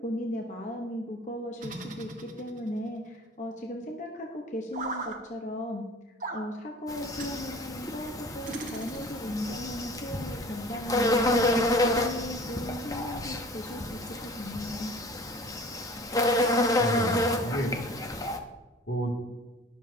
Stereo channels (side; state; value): both; normal; correlation 0.45